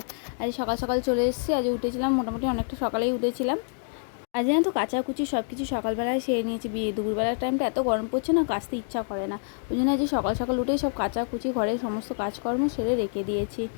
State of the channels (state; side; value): silent; right; digital silence